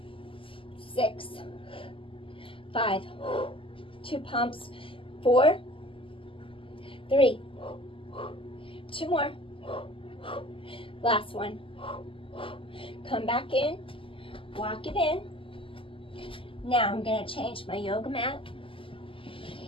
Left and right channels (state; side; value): late; right; 0.25 ms